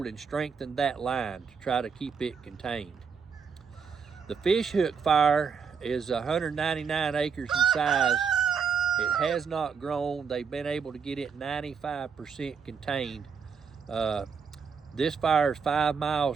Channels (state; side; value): quieter; left; 6.2 dB